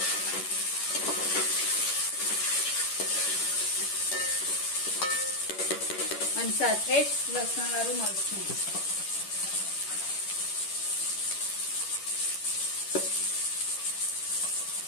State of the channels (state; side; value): late; right; 10 ms